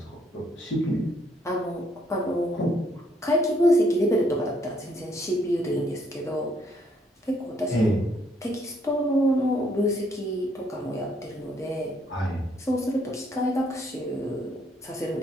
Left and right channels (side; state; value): both; normal; correlation 0.69